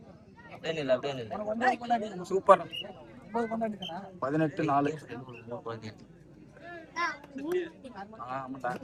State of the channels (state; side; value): identical; both; correlation 1.00